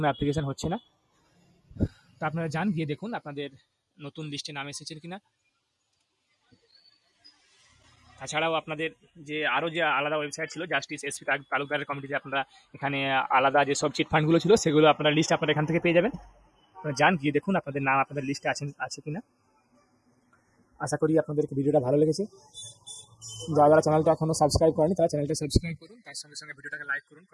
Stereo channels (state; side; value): identical; both; correlation 1.00